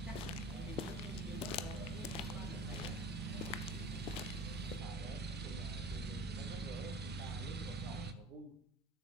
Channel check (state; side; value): normal; both; correlation 0.40